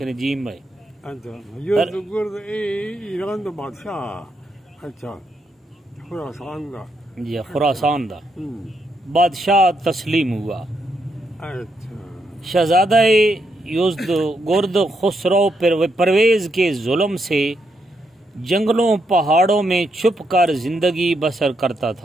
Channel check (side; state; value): both; normal; correlation 0.79